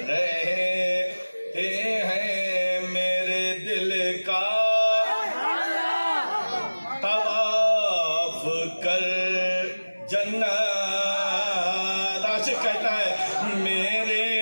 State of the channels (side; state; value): both; inverted; correlation -1.00